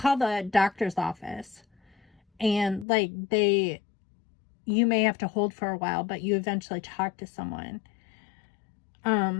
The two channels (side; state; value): right; drops out; at 2.9 s